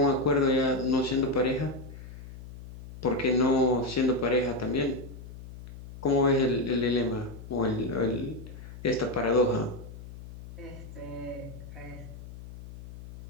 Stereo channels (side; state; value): left; noise; hum, 14 dB below the sound